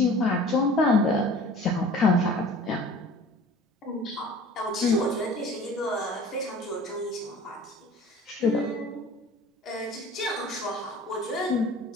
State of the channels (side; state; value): both; normal; correlation 0.45